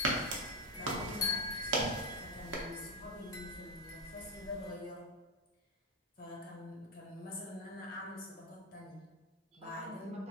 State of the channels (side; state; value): both; normal; correlation 0.08